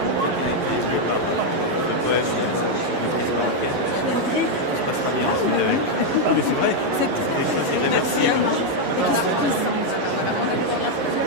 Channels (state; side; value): late; left; 11 ms